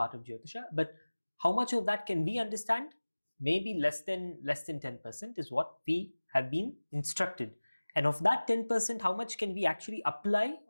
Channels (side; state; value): both; inverted; correlation -1.00